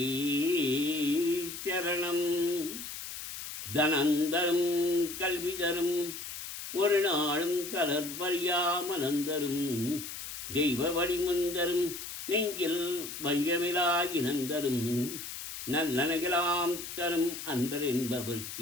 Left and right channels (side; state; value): left; noise; hiss, 9 dB below the sound